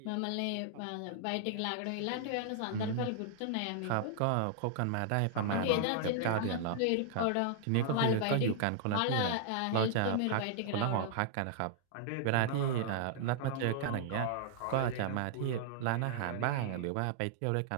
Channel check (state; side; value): different; both; correlation -0.01